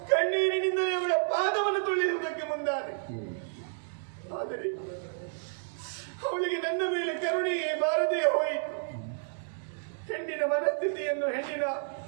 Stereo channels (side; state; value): left; silent; digital silence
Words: ಕಣ್ಣೀರಿನಿಂದಲೇ ಅವಳ ಪಾದವನ್ನು ತೊಳೆಯುವುದಕ್ಕೆ ಮುಂದಾದೆ. ಆದರೆ ಅವಳಿಗೆ ನನ್ನ ಮೇಲೆ ಕರುಣೆಯೇ ಬಾರದೇ ಹೋಯಿತು. ಹೆಣ್ಣಿನ ಮನಸ್ಥಿತಿಯನ್ನು, ಹೆಣ್ಣಿನ